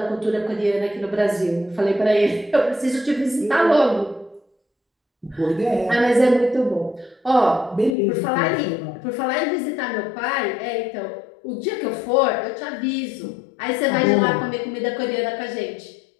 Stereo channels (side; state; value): right; drops out; at 8.0 s